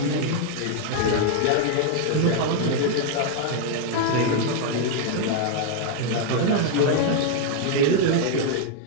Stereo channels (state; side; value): different; both; correlation 0.00